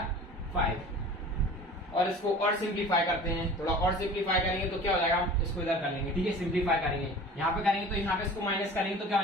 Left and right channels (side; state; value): both; normal; correlation 0.41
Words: 5। और इसको और सिंप्लीफाई करते हैं, थोड़ा और सिंप्लीफाई करेंगे तो क्या हो जाएगा, इसको इधर कर लेंगे, ठीक है। सिंप्लीफाई करेंगे, यहाँ पे करेंगे तो यहाँ पे इसको माइनस करेंगे तो क्या हो